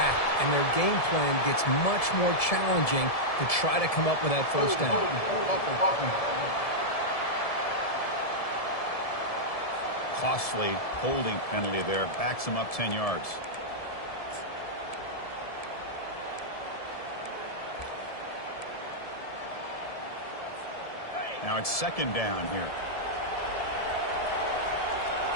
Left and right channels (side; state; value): right; late; 1.7 ms